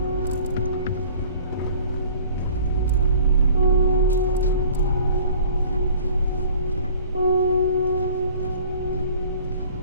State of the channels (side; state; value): both; inverted; correlation -0.49